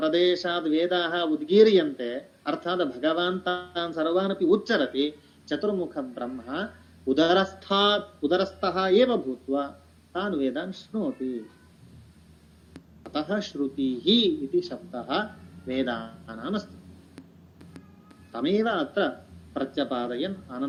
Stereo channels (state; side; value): identical; both; correlation 1.00